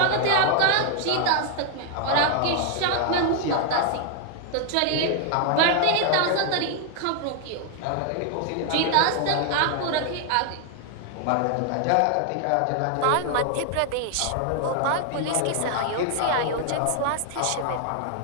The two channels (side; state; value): both; different; correlation 0.00